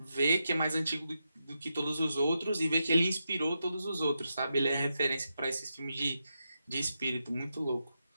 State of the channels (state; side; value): inverted; both; correlation -0.86